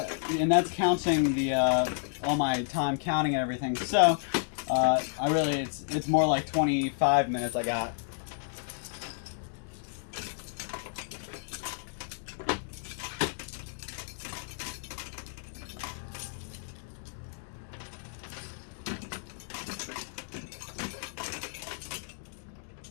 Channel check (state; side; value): silent; right; digital silence